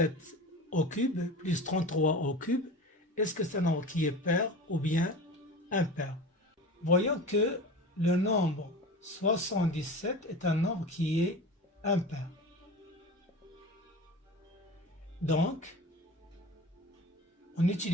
au cube plus 33 au cube, est-ce que c'est un nombre qui est pair ou bien impair? Voyons que le nombre 77 est un nombre qui est impair. Donc, en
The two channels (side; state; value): both; normal; correlation 0.33